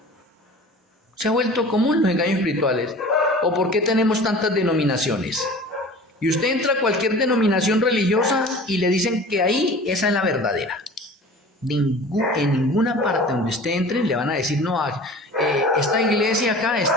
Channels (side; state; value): both; normal; correlation 0.41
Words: Se ha vuelto común los engaños espirituales. ¿O por qué tenemos tantas denominaciones? Y usted entra a cualquier denominación religiosa y le dicen que ahí esa es la verdadera. En ninguna parte donde usted entre le van a decir, no, esta iglesia acá,